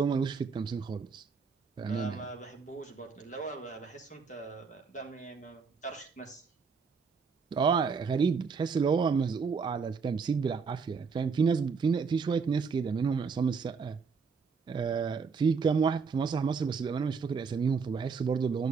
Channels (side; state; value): left; quieter; 5.4 dB